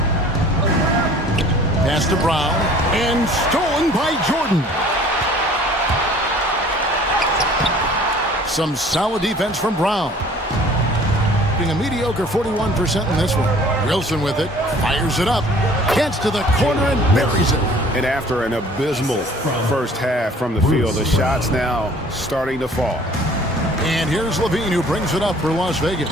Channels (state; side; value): normal; both; correlation 0.51